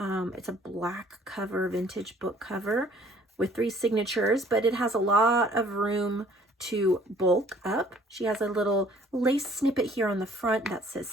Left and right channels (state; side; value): normal; both; correlation 0.57